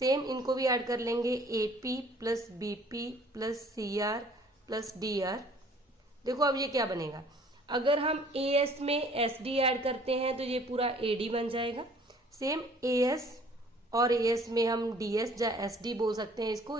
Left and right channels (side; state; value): both; normal; correlation 0.55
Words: इनको भी ऐड कर लेंगे, AP plus BP plus CR plus DR। देखो अब ये क्या बनेगा, अगर हम AS में SD ऐड करते हैं तो ये पूरा AD बन जाएगा। सेम AS और AS में हम DS या SD बोल सकते हैं,